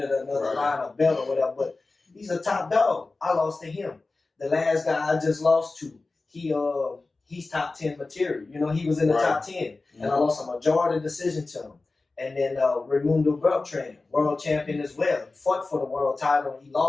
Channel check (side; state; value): right; quieter; 3.5 dB